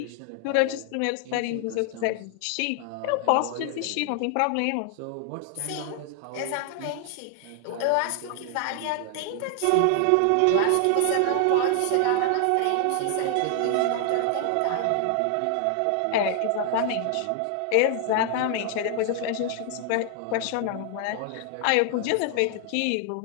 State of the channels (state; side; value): different; both; correlation 0.00